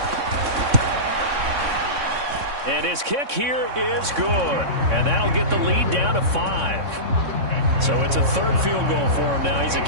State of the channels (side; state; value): left; late; 3.6 ms